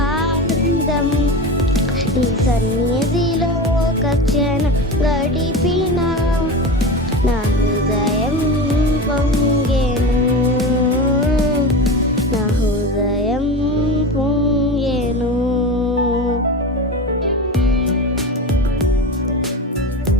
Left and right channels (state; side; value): normal; both; correlation 0.26